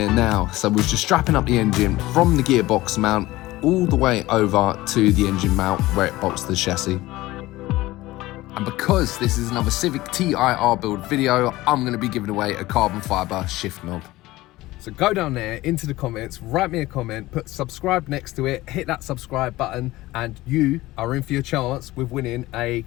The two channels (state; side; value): quieter; right; 18.1 dB